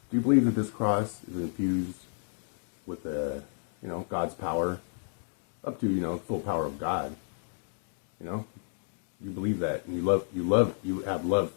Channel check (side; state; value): right; silent; digital silence